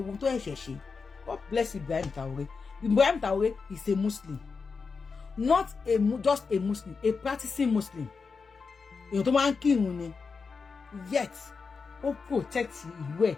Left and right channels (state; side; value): quieter; right; 5.0 dB